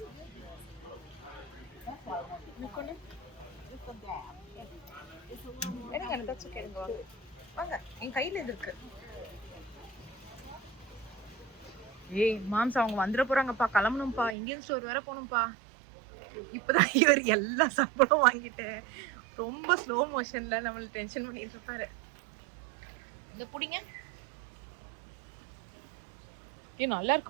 எடுங்க, தட்ஸ் ஓகே. வாங்க, என் கையில இது இருக்கு. ஏய் மாம்ஸ், அவங்க வந்துட போறாங்கப்பா, கிளம்பணும்ப்பா. இந்தியன் ஸ்டோர் வேற போகணும்ப்பா. இப்பதான் இவர் எல்லா சாப்பாடும் வாங்கிட்டு ரொம்ப ஸ்லோ மோஷன்ல நம்மள டென்ஷன் பண்ணிட்டு இருப்பாரு. இந்த புடிங்க. நல்லா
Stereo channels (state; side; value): drops out; left; at 14.4 s